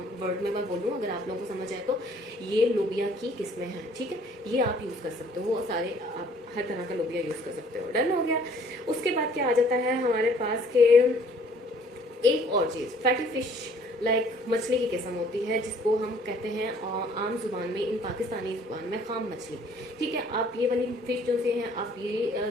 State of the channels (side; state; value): both; normal; correlation 0.58